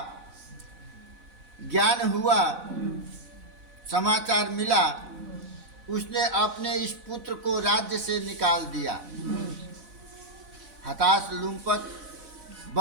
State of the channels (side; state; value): left; late; 4.0 ms